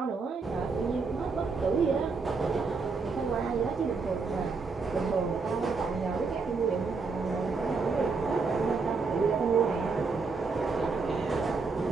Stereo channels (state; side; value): quieter; left; 4.5 dB